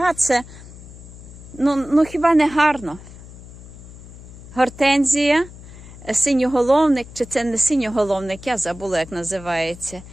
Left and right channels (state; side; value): noise; left; hum, 17 dB below the sound